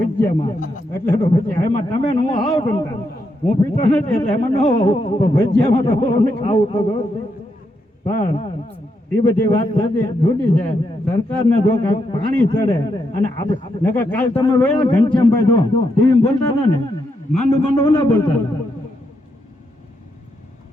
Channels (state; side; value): normal; both; correlation 0.81